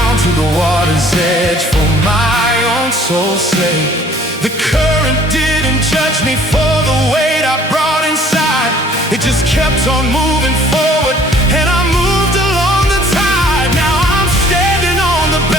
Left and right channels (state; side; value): normal; both; correlation 0.55